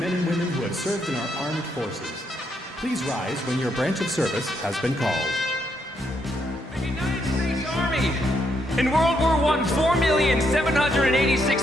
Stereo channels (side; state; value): both; normal; correlation 0.76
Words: and women who have served in our armed forces. Please rise when your branch of service has been called. Army. In World War I,